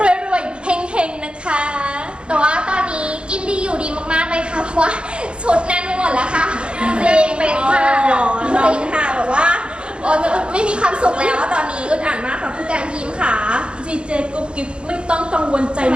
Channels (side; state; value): left; late; 0.055 ms